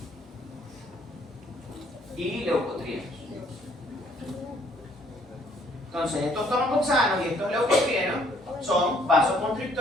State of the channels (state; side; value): normal; both; correlation 0.63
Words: y leucotrienos. Entonces, estos tromboxanos y estos leucotrienos son